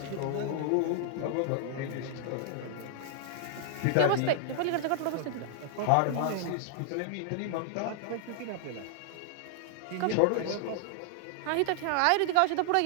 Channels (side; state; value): both; different; correlation 0.00